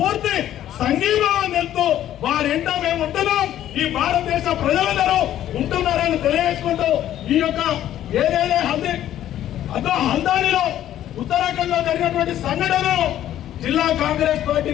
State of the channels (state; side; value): quieter; right; 12.0 dB